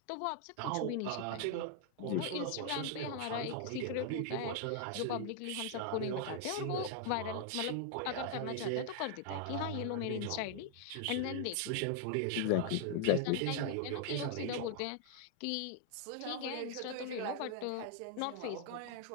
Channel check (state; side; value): different; both; correlation 0.00